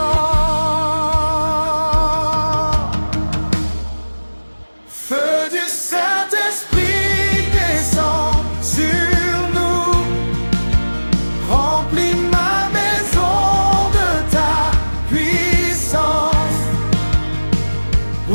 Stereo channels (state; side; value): inverted; both; correlation -1.00